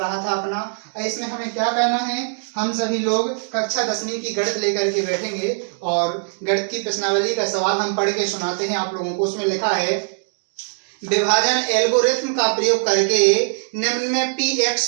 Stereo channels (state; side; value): silent; left; digital silence